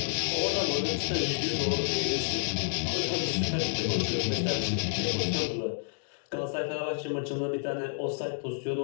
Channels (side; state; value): right; silent; digital silence